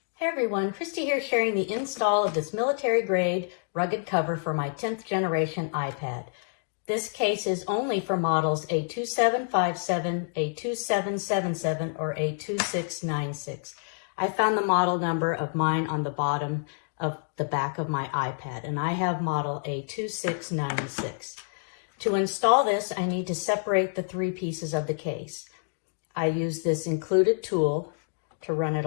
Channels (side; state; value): right; silent; digital silence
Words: Hey everyone, Christy here sharing the install of this military grade rugged cover for my 10th generation iPad. This case is only for models A2757, A2777, or A2696. I found the model number of mine on the bottom of the back of my iPad, and I have model A2696. To install this, I need to separate the three pieces of the case. I use this included tool to run it